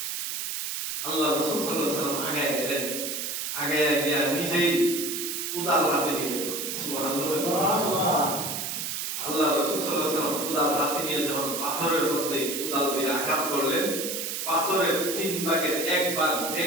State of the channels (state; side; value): noise; right; hiss, 3 dB below the sound